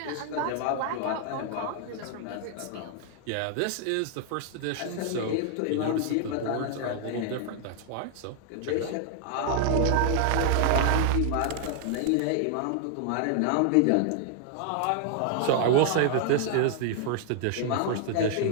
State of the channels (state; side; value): different; both; correlation 0.00